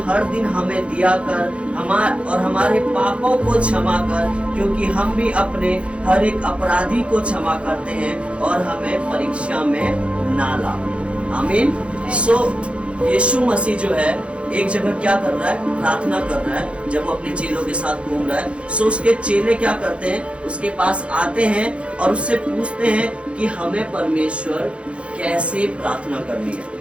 हर दिन हमें दिया कर, हमारे पापों को क्षमा कर, क्योंकि हम भी अपने हर एक अपराधी को क्षमा करते हैं, और हमें परीक्षा में ना ला। आमीन। सो यीशु मसीह जो है एक जगह क्या कर रहा है? प्रार्थना कर रहा है। जब वो अपने चेलों के साथ घूम रहा है, सो उसके चेले क्या करते हैं? उसके पास आते हैं और उससे पूछते हैं कि हमें परमेश्वर कैसे प्रार्थना करनी है।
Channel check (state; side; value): late; left; 0.060 ms